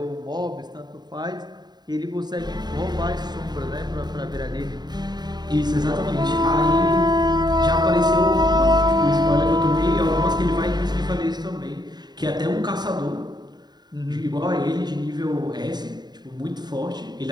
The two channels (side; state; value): left; late; 0.20 ms